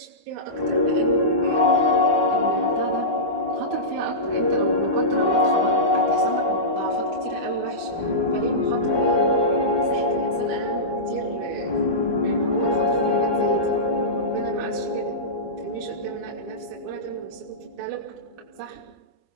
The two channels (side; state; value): left; late; 12 ms